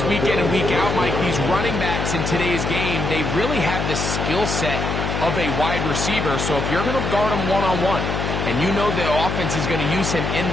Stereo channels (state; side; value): noise; left; hum, 2 dB below the sound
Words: week in and week out, Mike. These running backs in today's game, they really have the skill set of a wide receiver. So if you're going to guard him one-on-one, and you know the offense is going to use him in